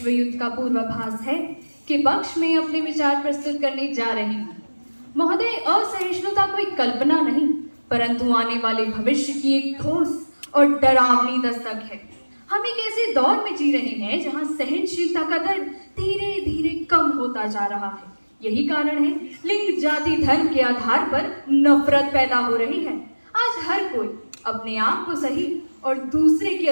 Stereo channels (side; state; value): both; inverted; correlation -1.00